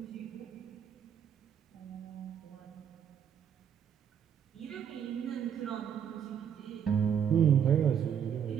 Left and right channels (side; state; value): left; quieter; 8.4 dB